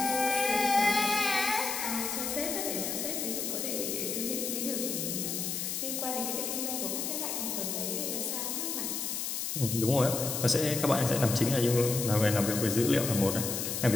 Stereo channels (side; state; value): left; noise; hiss, 2 dB below the sound